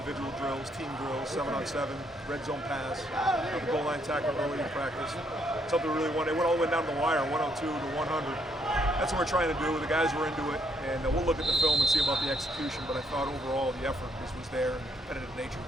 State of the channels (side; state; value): both; normal; correlation 0.72